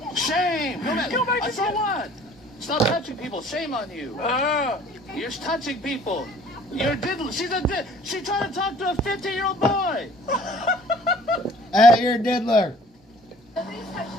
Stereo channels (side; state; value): both; normal; correlation 0.53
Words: Shame. Go back to what? Stop touching people. Shame on you. You're touching people. You're diddler. She's trying to talk to a 15-year-old boy. You're a diddler.